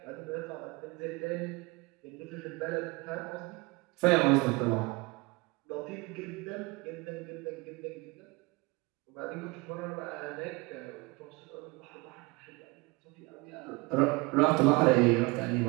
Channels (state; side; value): quieter; left; 25.5 dB